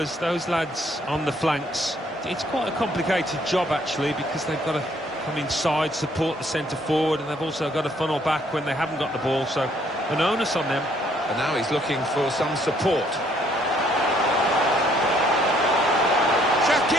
those lads on the flanks, it's quite a complicated job actually, because they've got to come inside, support the centre forward, and they've also got to funnel back when they haven't got the ball, so an onus on them. And now he's looking for some support.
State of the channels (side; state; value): both; normal; correlation 0.65